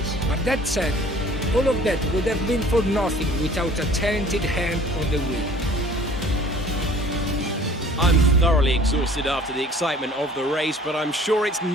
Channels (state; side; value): normal; both; correlation 0.51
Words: But that said, all of that would have been for nothing without a talented hand on the wheel. I'm thoroughly exhausted after the excitement of the race, but I'm sure it's